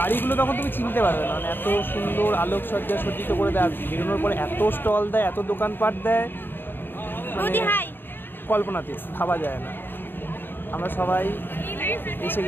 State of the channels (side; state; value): right; late; 0.097 ms